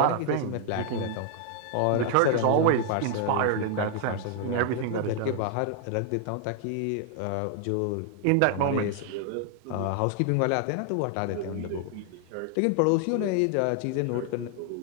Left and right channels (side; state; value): both; different; correlation 0.00